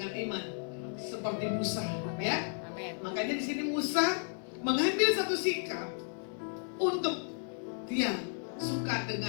iman seperti Musa, ya. Amin. Makanya di sini Musa mengambil satu sikap untuk dia suka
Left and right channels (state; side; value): silent; right; 55 dB below the other